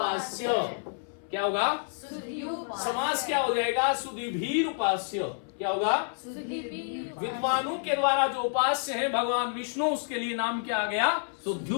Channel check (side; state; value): right; silent; 59 dB below the other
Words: क्या होगा? समास क्या हो जाएगा? सुधीभीर उपास्य। क्या होगा? विद्वानों के द्वारा जो उपास्य है भगवान विष्णु, उसके लिए नाम क्या आ गया?